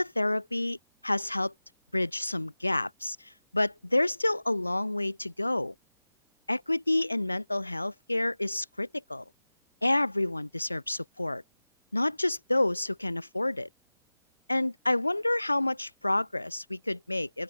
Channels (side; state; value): both; inverted; correlation -0.99